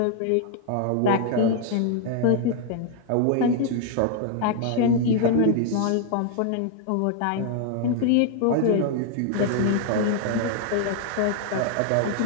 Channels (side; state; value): both; different; correlation 0.00